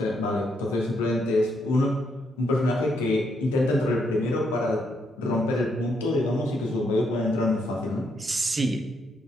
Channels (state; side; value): normal; both; correlation 0.77